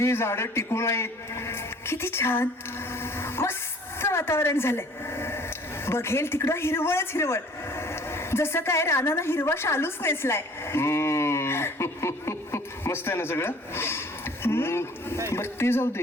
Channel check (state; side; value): normal; both; correlation 0.52